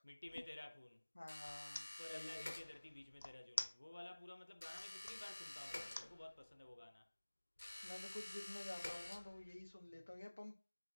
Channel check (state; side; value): inverted; both; correlation -1.00